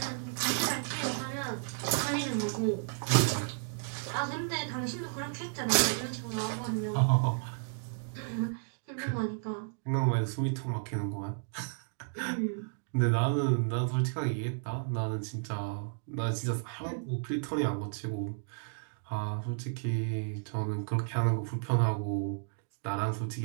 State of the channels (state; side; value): silent; left; digital silence